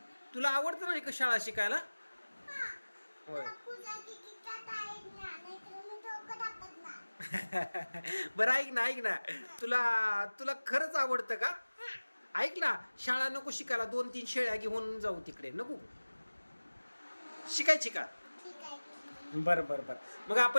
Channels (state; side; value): inverted; both; correlation -1.00